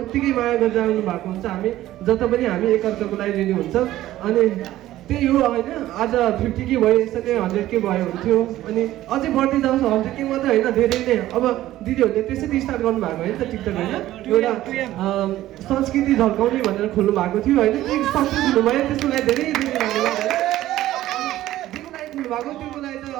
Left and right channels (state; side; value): quieter; left; 14.6 dB